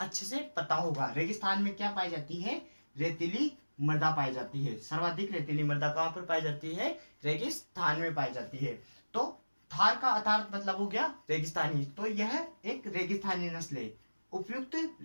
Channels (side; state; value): both; inverted; correlation -1.00